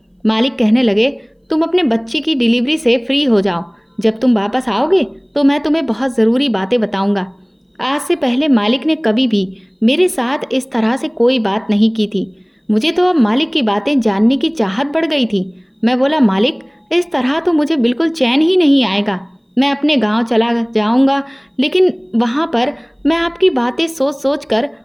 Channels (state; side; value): identical; both; correlation 1.00